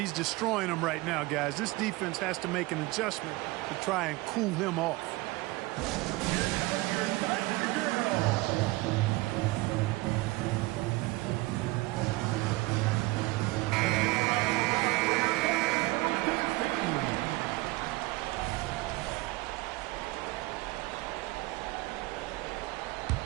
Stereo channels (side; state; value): left; quieter; 21.1 dB